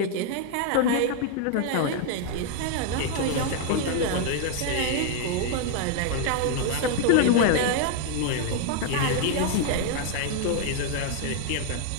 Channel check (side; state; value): both; different; correlation 0.00